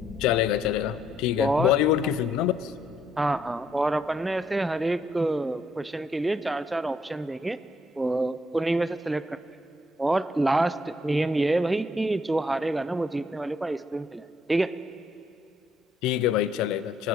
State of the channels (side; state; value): both; normal; correlation 0.71